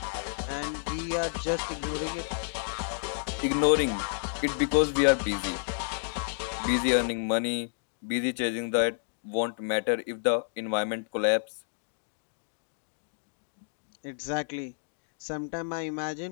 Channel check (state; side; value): silent; right; digital silence